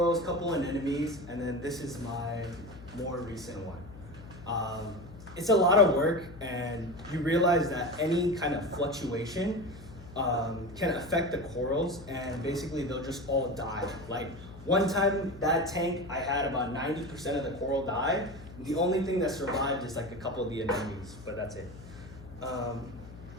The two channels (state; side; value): noise; left; hum, 16 dB below the sound